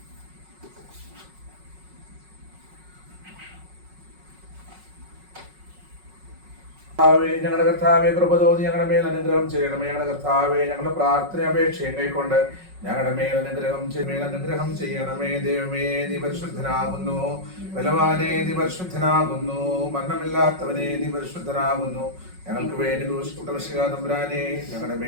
ഞങ്ങളുടെ കർത്താവെ, കൃപ തോന്നി ഞങ്ങളുടെ മേൽ അനുഗ്രഹം ചെയ്യണമേ. ഞങ്ങളുടെ കർത്താവെ, ഞങ്ങളുടെ പ്രാർത്ഥന അപേക്ഷയും കൈക്കൊണ്ട് ഞങ്ങളുടെ മേൽ അനുഗ്രഹം ചെയ്യണമേ. ദൈവമേ, നീ പരിശുദ്ധനാകുന്നു. ബലവാനെ, നീ പരിശുദ്ധനാകുന്നു. മരണമില്ലാത്തവനെ, നീ പരിശുദ്ധനാകുന്നു. ഞങ്ങൾക്ക് വേണ്ടി ക്രൂശിക്കപ്പെട്ട മിശിഹാ തമ്പുരാനെ, ഞങ്ങളുടെ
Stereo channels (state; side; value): late; left; 5.4 ms